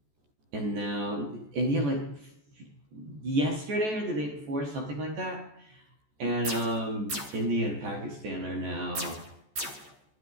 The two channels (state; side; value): late; left; 14 ms